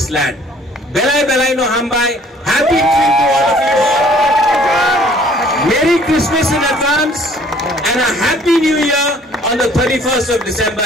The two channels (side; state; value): both; normal; correlation 0.57